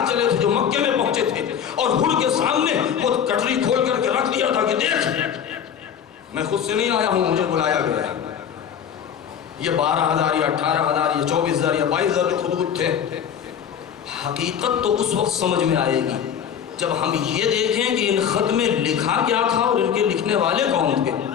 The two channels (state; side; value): quieter; right; 8.4 dB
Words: چلے تھے جو مکے میں پہنچے تھے، اور ہر کے سامنے وہ کٹری کھول کر کے رکھ دیا تھا کہ دیکھ، میں خود سے نہیں آیا ہوں، مجھے بلایا گیا ہے۔ یہ 12,000 یا 18,000 یا 24,000 یا 22,000 جو خطوط تھے، حقیقت تو اس وقت سمجھ میں آئے گی جب ہم یہ دیکھیں کہ ان خط میں لکھا کیا تھا اور ان کے لکھنے والے کون تھے۔